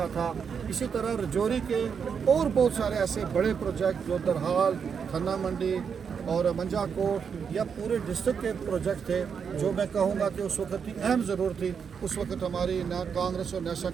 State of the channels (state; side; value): quieter; left; 6.6 dB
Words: تھا، اسی طرح رجوری کے اور بہت سارے ایسے بڑے پروجیکٹ جو درحال، تھنہ منڈی اور منجا کوٹ یا پورے ڈسٹرکٹ کے پروجیکٹ تھے جو میں کہوں گا کہ اس وقت کی اہم ضرورت تھی. اس وقت ہماری کانگریس اور نیشنل